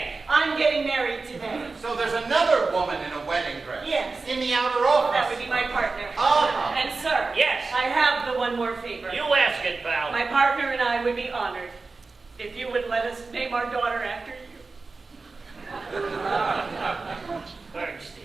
I'm getting married today. So there's another woman in a wedding dress. Yes. In the outer office. That would be my partner. Uh-huh. And sir, Yes. I have the one more favor. You ask it, pal. My partner and I would be honored if you would let us name our daughter after you.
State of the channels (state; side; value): quieter; left; 4.0 dB